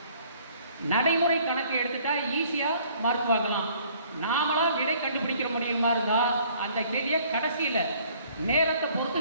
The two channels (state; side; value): inverted; both; correlation -0.58